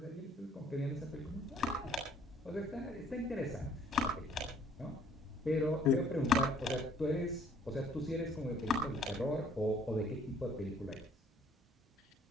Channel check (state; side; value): normal; both; correlation 0.60